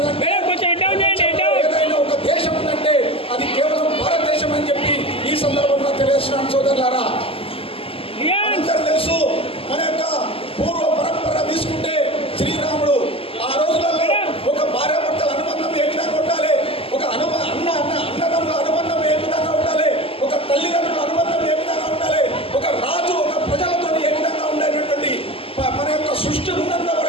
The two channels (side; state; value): right; late; 0.27 ms